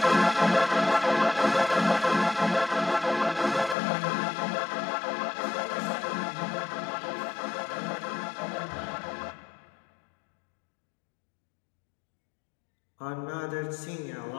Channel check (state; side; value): drops out; right; at 3.8 s